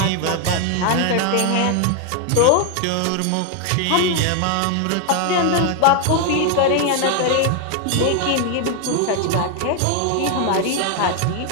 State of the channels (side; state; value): both; different; correlation 0.00